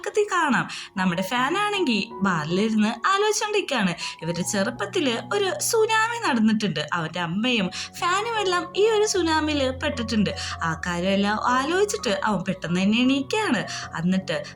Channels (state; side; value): identical; both; correlation 1.00